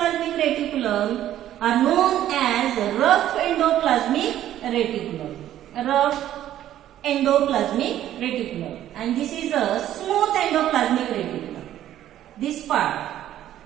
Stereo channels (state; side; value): quieter; left; 12.2 dB